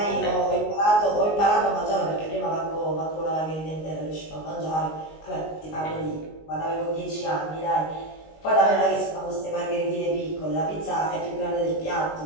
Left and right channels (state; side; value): late; right; 19 ms